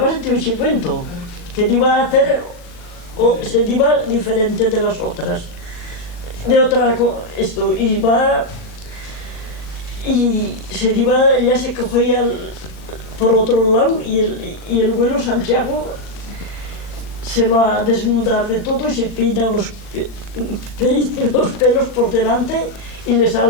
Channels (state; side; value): late; right; 40 ms